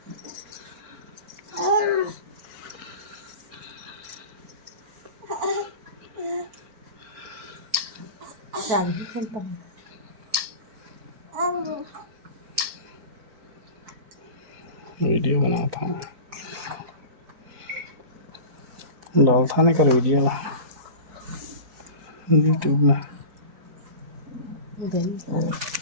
वीडियो बना था डाल था नहीं कर वीडियो ना यूट्यूब में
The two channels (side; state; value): left; late; 4.5 ms